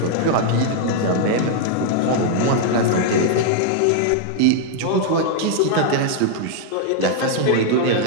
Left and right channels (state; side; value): different; both; correlation 0.00